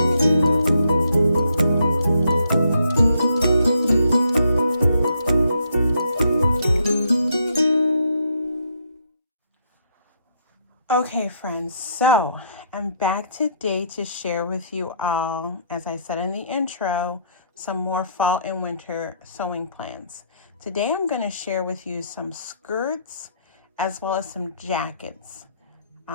Okay, friends, so I'm back today to share with you all, as I said in the intro, some more fall and winter sewing plans. Today I'm going to share with you some skirts as well as some jackets.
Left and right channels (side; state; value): both; inverted; correlation -0.71